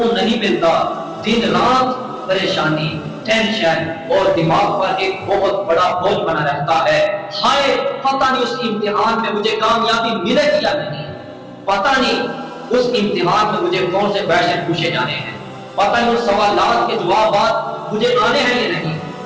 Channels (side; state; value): both; identical; correlation 1.00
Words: نہیں ملتا، دن رات پریشانی، ٹینشن اور دماغ پر ایک بہت بڑا بوجھ بنا رہتا ہے۔ ہائے پتہ نہیں اس امتحان میں مجھے کامیابی ملے گی یا نہیں، پتہ نہیں اس امتحان میں مجھے کون سے کویشچن پوچھے جانے ہیں، پتہ نہیں اس سوالات کے جوابات مجھے آنے ہیں یا نہیں،